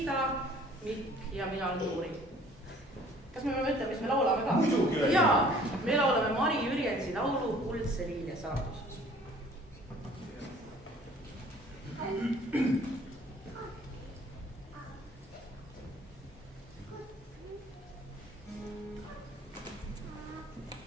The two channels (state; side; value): normal; both; correlation 0.54